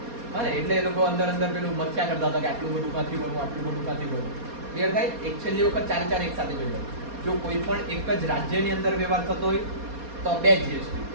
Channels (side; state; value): left; late; 4.2 ms